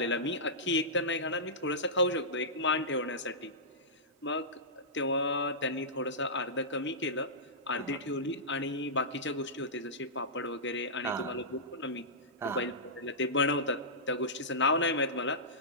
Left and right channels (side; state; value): both; normal; correlation -0.16